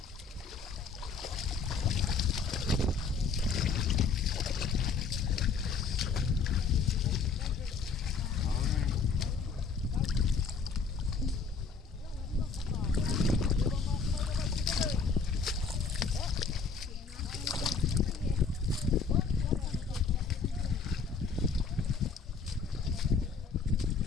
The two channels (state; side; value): quieter; right; 5.0 dB